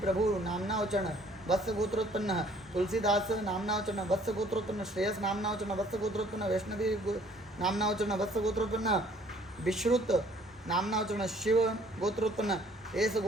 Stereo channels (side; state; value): both; normal; correlation 0.58